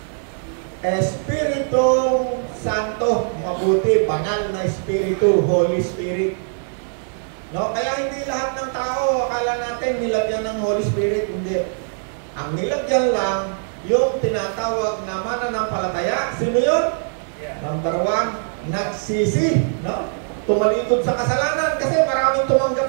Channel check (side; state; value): left; silent; digital silence